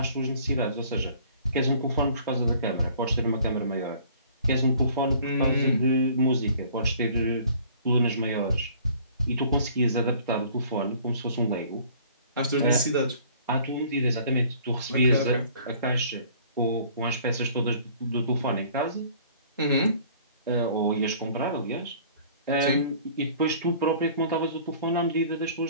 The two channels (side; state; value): both; inverted; correlation -0.53